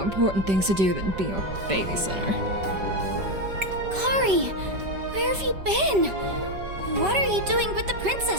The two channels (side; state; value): left; late; 5.2 ms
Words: important things to do than be your babysitter. Kari, where have you been? What are you doing with the